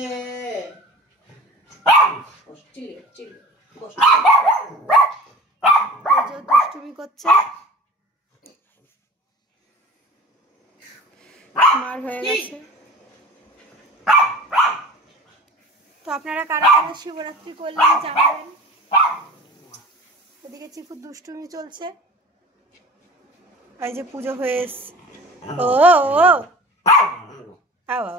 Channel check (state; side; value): normal; both; correlation 0.39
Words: দুষ্টুমি করছে, মার হয়ে গেছে। তো আপনারা কারা কারা শিবরাত্রি করলেন জানাবেন। ওদিকে চিকুর দুষ্টুমি চলছে, এই যে পুজো হয়ে এসছে। ও ও